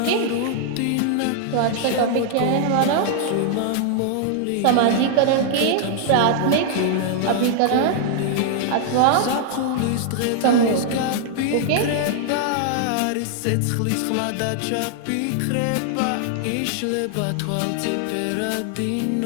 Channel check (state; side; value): different; both; correlation 0.00